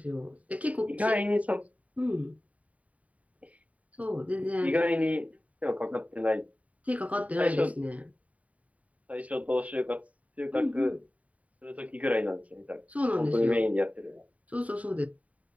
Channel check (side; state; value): left; late; 0.068 ms